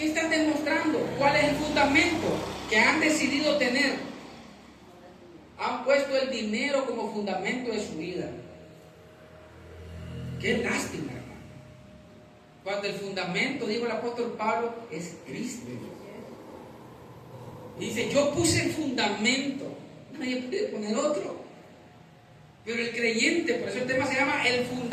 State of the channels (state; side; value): identical; both; correlation 1.00